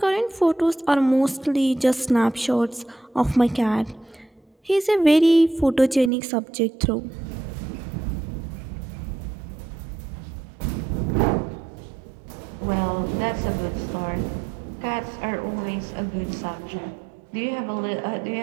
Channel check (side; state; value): left; drops out; at 6.1 s